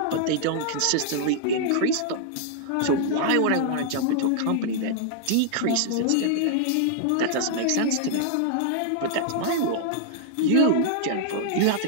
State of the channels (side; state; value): both; different; correlation -0.01